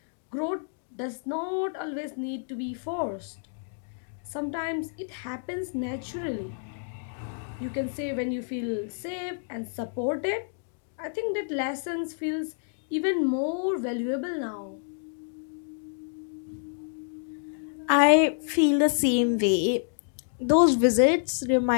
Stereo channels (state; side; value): silent; right; digital silence